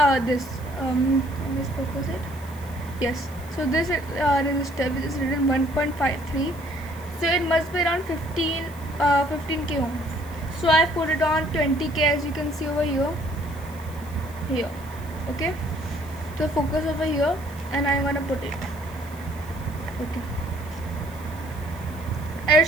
me focus it. Yes. So this resistor, which is written 1.53. So it must be around 15k ohms. So I put it on 20k, as you can see over here. Here. Okay. So focus over here, and I'm gonna put it. Okay.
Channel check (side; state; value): left; noise; hiss, 21 dB below the sound